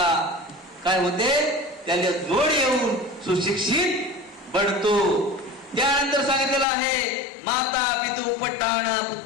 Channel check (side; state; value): right; drops out; at 6.7 s